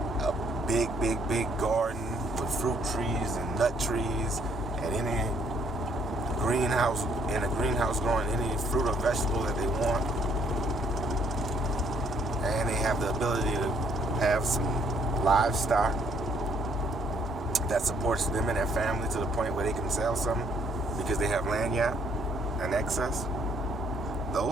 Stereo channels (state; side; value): normal; both; correlation 0.66